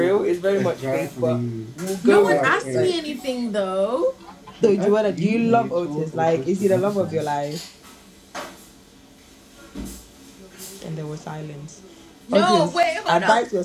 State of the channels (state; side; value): identical; both; correlation 1.00